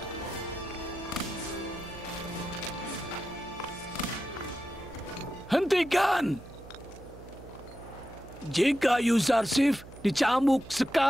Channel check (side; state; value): right; noise; hum, 17 dB below the sound